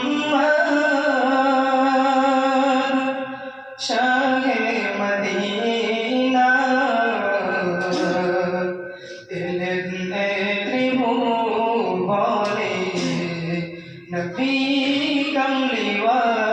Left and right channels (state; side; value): identical; both; correlation 1.00